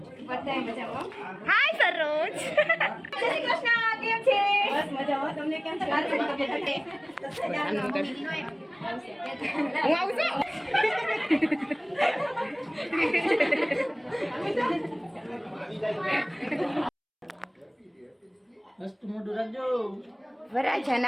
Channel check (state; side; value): identical; both; correlation 1.00